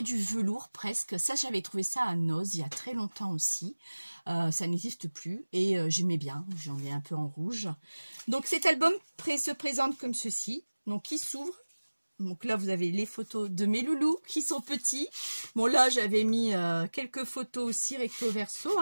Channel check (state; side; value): inverted; both; correlation -1.00